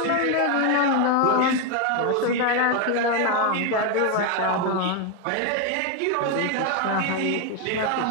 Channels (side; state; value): both; different; correlation 0.02